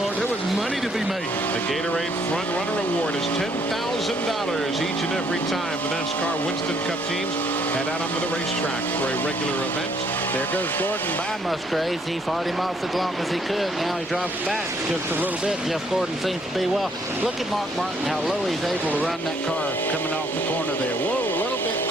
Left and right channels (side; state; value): both; normal; correlation 0.68